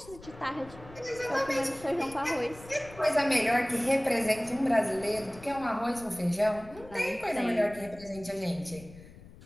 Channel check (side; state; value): left; noise; rumble, 19 dB below the sound